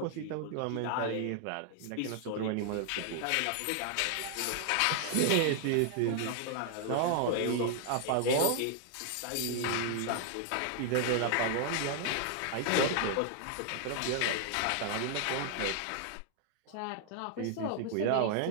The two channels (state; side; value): different; both; correlation 0.00